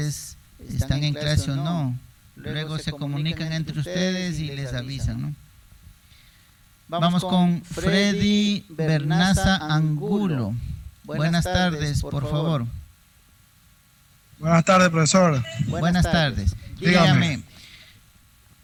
están en clase o no. Luego se comunican entre ustedes y les avisan, ¿no? Vamos con Freddy Bernaza Angulo. Buenas tardes, por favor. Buenas tardes, profesor. Buenas tardes. Dígame,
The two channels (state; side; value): identical; both; correlation 1.00